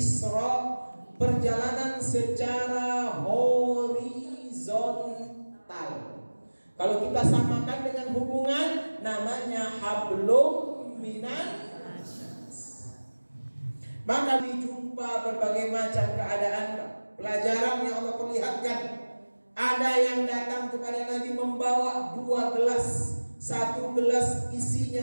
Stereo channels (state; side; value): inverted; both; correlation -1.00